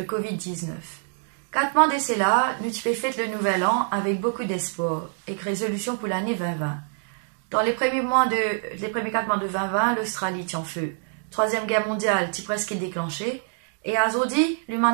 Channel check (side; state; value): left; silent; 56 dB below the other